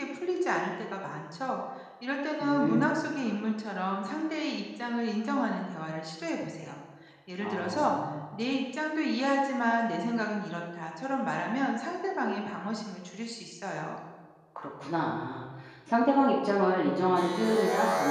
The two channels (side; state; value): both; identical; correlation 1.00